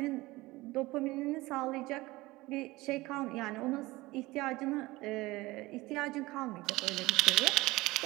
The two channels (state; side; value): quieter; left; 20.2 dB